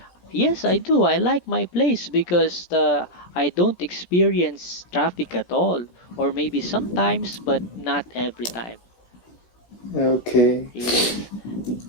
yes, I do. I like my place because I don't experience traffic at all, or maybe sometimes, but not every time. okay. Yes.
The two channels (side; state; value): right; late; 17 ms